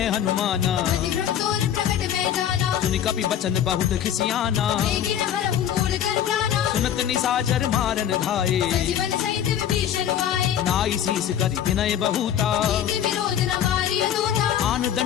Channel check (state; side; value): quieter; right; 10.0 dB